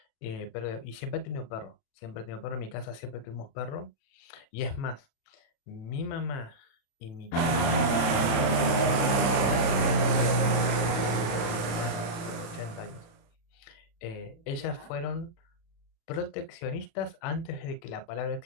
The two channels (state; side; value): late; right; 35 ms